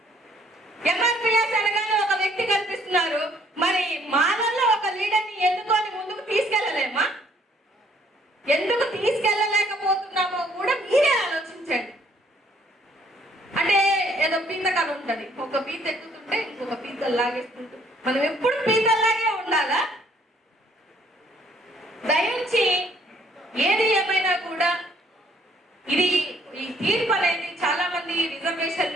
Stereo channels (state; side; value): normal; both; correlation 0.63